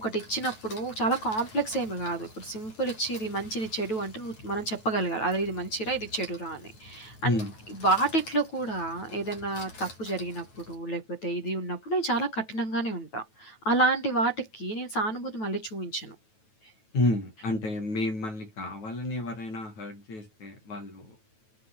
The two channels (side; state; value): right; late; 9.2 ms